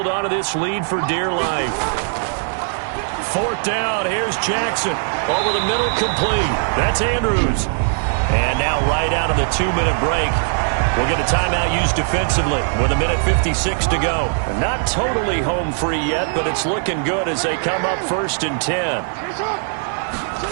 on to this lead for dear life. 4th down, here's Jackson. Over the middle, complete. That's Andrews. And now right out of the 2-minute break, we'll get a timeout used defensively with 1:56 to go. Not totally home free yet, but it's looking good as they come up 1st and 10.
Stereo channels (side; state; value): left; silent; digital silence